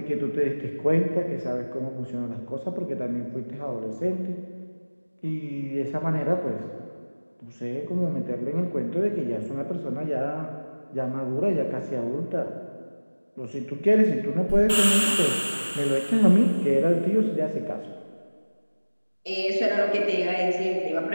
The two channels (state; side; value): inverted; both; correlation -1.00